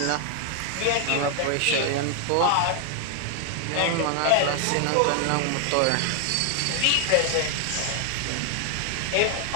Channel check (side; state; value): both; different; correlation 0.00